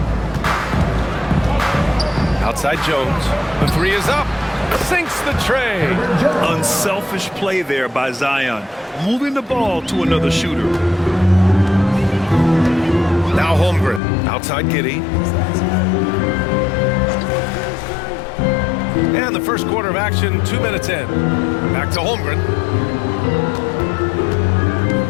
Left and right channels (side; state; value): right; drops out; at 14.0 s